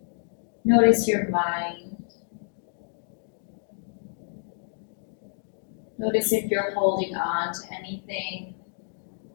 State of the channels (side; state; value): right; silent; digital silence